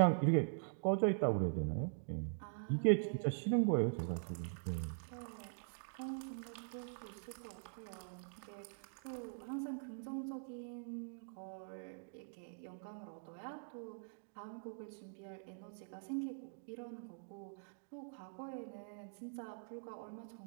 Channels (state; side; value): silent; left; digital silence